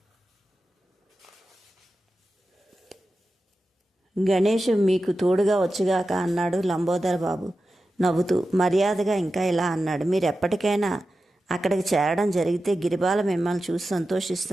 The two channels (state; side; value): normal; both; correlation 0.92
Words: గణేష్ మీకు తోడుగా వచ్చుగాక అన్నాడు లంబోదర్ బాబు నవ్వుతూ. మర్యాదగా ఇంకా ఇలా అన్నాడు. మీరు ఎప్పటికైనా అక్కడికి చేరడం జరిగితే గిరిబాల మిమ్మల్ని చూసి